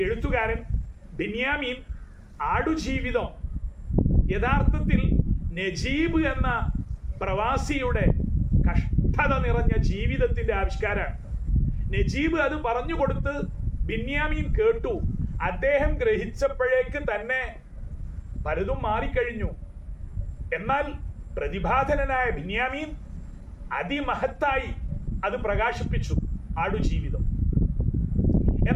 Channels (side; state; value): both; identical; correlation 1.00